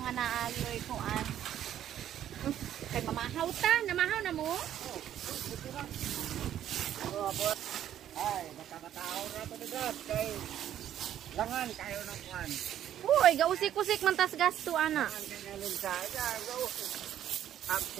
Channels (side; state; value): left; quieter; 11.0 dB